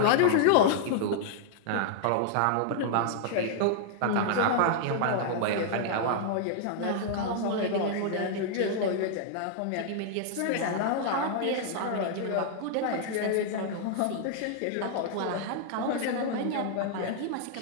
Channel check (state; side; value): different; both; correlation -0.01